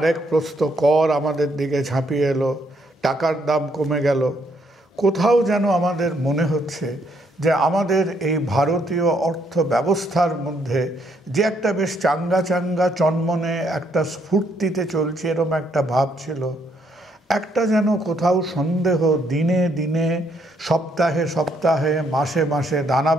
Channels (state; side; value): normal; both; correlation 0.72